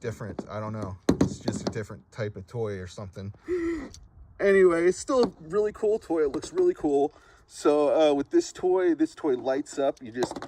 I don't know, it's just a different type of toy or something. Anyway, it's still a really cool toy. It looks really cool. So with this toy lights up. You just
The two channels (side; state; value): both; identical; correlation 1.00